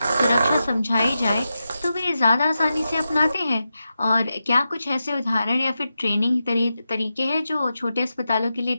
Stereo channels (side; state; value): both; inverted; correlation -0.90